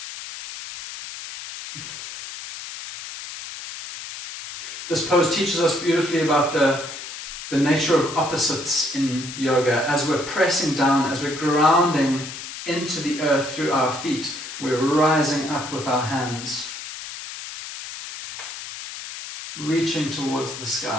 This pose teaches us beautifully about the nature of opposites in yoga. As we're pressing down, as we're grounding into the earth through our feet, we're rising up with our hands, reaching towards the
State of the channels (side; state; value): left; noise; hiss, 10 dB below the sound